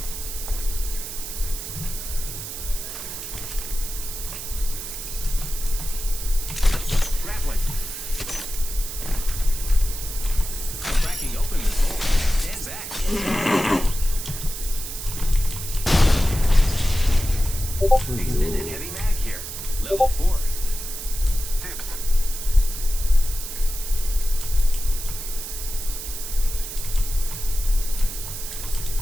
Grappling. Cracking open this hole. Stand back. Extended heavy mag here. Level 4. Dips.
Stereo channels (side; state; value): right; noise; hiss, 8 dB below the sound